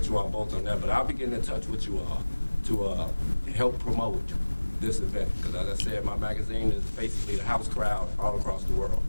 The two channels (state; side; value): inverted; both; correlation -1.00